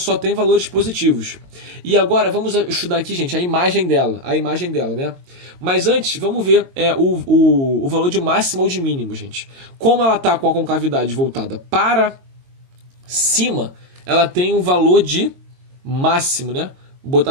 tem valores positivos. E agora, vamos estudar aqui, gente, a imagem dela. A imagem dela, né? Mas antes, vamos ver o valor de máximo ou de mínimo, gente. Como ela está com a concavidade voltada para cima, ela tem um valor de máximo, né? Vou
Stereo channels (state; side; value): late; left; 22 ms